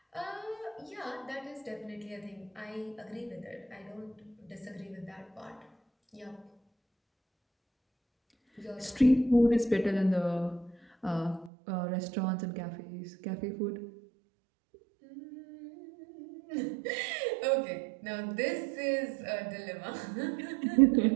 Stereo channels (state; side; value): drops out; left; at 11.5 s